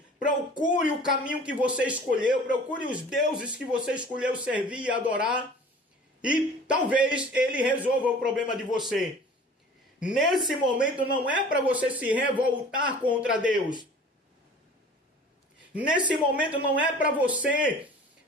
procure o caminho que você escolheu, procure os deuses que você escolheu servir e adorar, e talvez Ele resolva o problema de você. Nesse momento não é para você se revoltar contra Deus. Nesse momento não é para você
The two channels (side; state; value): both; normal; correlation 0.45